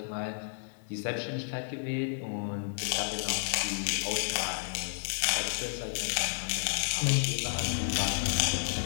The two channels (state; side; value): silent; right; digital silence